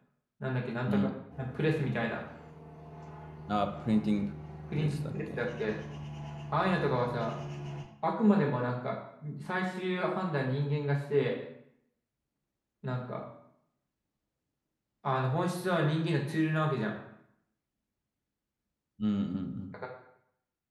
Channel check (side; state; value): both; identical; correlation 1.00